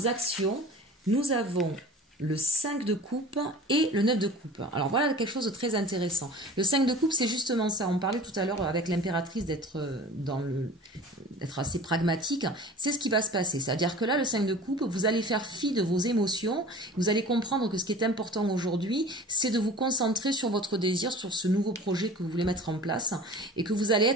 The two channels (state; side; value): normal; both; correlation 0.40